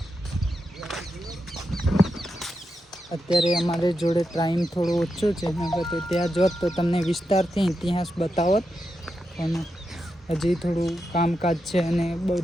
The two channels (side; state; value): both; normal; correlation 0.87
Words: અત્યારે અમારે જોડે ટાઈમ થોડો ઓછો છે, તો ત્યાં જોત તો તમને વિસ્તારથી ઇતિહાસ બતાવત, પણ હજી થોડું કામકાજ છે અને